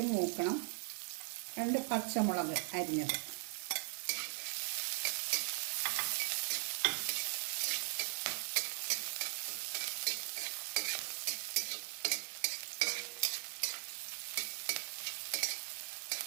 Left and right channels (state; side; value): silent; left; 51 dB below the other